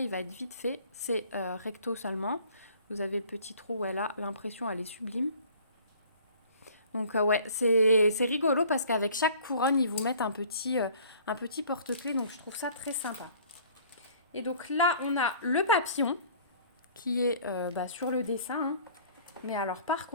il va être vite fait. C'est recto seulement. Vous avez le petit trou où elle a l'impression, elle est sublime. Donc, ouais, c'est rigolo parce qu'avec chaque couronne, ils vous mettent un petit porte-clés. Donc, je trouve ça très sympa. Et donc, là, on a le papillon qui est sur le dessin. Hein. Mais alors, par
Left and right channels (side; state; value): both; inverted; correlation -0.52